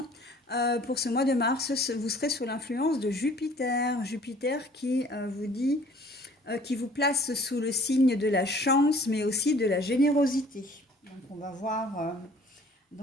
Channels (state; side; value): normal; both; correlation 0.53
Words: pour ce mois de mars, vous serez sous l'influence de Jupiter. Jupiter qui vous place sous le signe de la chance, mais aussi de la générosité. Donc on va voir